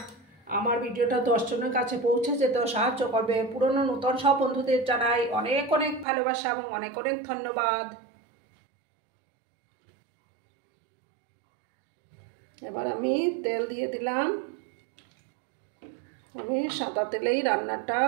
আমার ভিডিওটা 10 জনের কাছে পৌঁছে যেতেও সাহায্য করবে। পুরনো নতুন সব বন্ধুদের জানাই অনেক অনেক ভালোবাসা এবং অনেক অনেক ধন্যবাদ। এবার আমি তেল দিয়ে দিলাম। আমি সাদা তেলেই রান্নাটা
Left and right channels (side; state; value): left; drops out; at 6.1 s